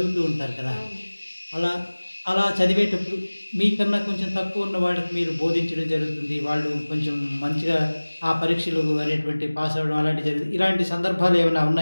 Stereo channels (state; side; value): inverted; both; correlation -1.00